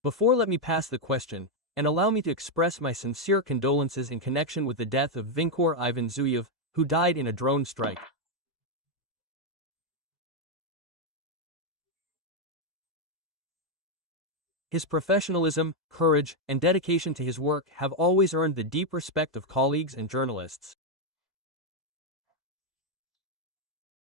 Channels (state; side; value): normal; both; correlation 0.02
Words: Before let me pass the question, and allow me to express my sincere condolences in connection with the death of Vinkor Ivan Zuyev, who died in a drone strike. His professionalism, courage, and dedication to his work have always earned the deep respect of colleagues and journalists.